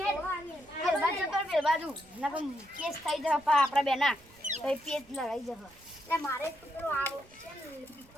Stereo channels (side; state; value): right; noise; rumble, 26 dB below the sound